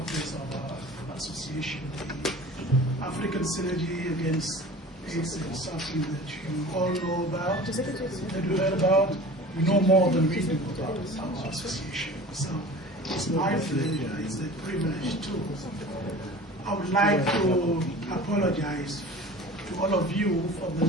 of our association, the African Synergy Against AIDS and Suffering, that you all know about, that you heard about. We know more than we do about our association. So it's my pleasure, it's a privilege too. I would like to apologize to all of you for the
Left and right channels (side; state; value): both; normal; correlation 0.40